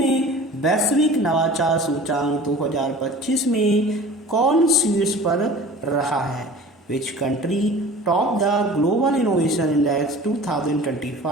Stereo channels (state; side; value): normal; both; correlation 0.41